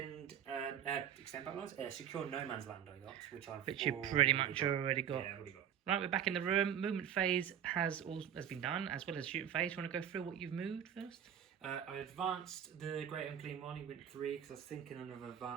battle lines. Secure no man's land I got, which you pretty much already got. Yeah, I've already got. Right, we're back in the room. Movement phase has been done, as well as shooting phase. You want to go through what you've moved first? I advanced the Great Unclean one. He went 3 because I was thinking of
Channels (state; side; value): quieter; left; 9.3 dB